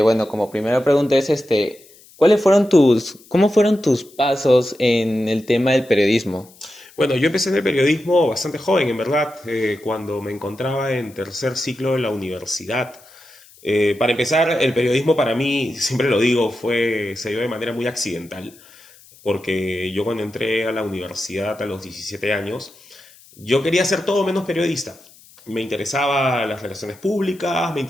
como primera pregunta es cómo fueron tus pasos en el tema del periodismo? Bueno, yo empecé en el periodismo bastante joven, en verdad, cuando me encontraba en tercer ciclo de la universidad. Para empezar, el periodismo para mí, siempre lo digo, se dio de manera muy accidental, porque yo cuando entré a la universidad a los 17 años, yo quería ser todo menos periodista. Me interesaba las relaciones públicas, me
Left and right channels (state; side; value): noise; left; hiss, 25 dB below the sound